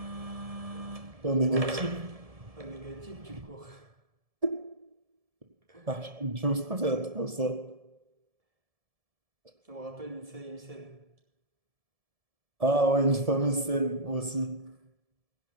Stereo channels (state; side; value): late; left; 1.7 ms